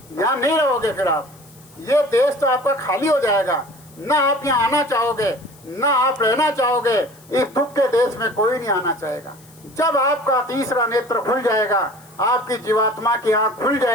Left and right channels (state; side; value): noise; left; hiss, 26 dB below the sound